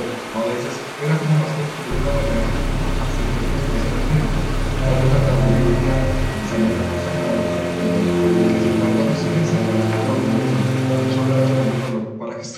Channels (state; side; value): identical; both; correlation 1.00